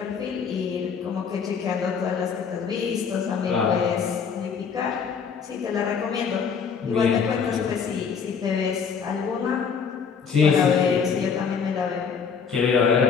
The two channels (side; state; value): right; quieter; 6.3 dB